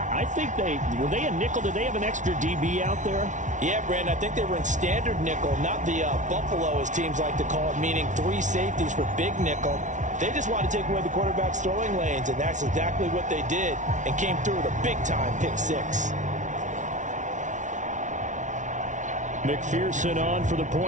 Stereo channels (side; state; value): left; late; 0.36 ms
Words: think were they a nickel? Did they have an extra DB out there? Yeah, Brandon, I think they were in standard nickel, not the Buffalo, as teams like to call it, meaning 3 safeties for big nickel. They just wanted to take away the quarterback's throwing lanes, and that's exactly what they did and came through with a big-time pick 6. McPherson on for the